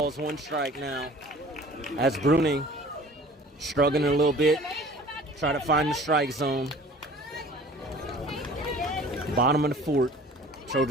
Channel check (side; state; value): both; normal; correlation 0.47